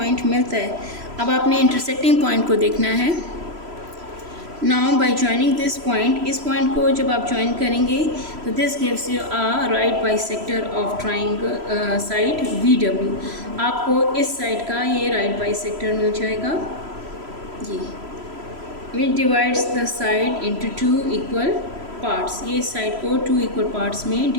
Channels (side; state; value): left; late; 3.0 ms